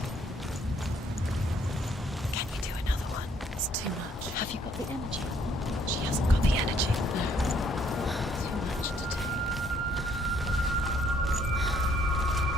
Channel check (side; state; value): both; normal; correlation 0.66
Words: Can you do another one? It's too much. Have you got the energy? She hasn't got the energy. No. Too much to do.